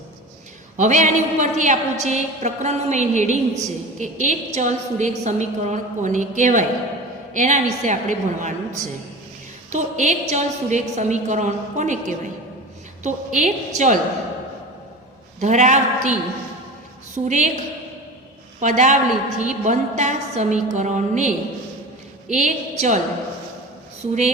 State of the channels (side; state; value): both; normal; correlation 0.33